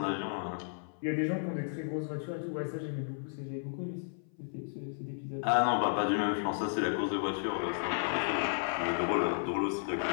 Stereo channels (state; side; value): silent; right; 55 dB below the other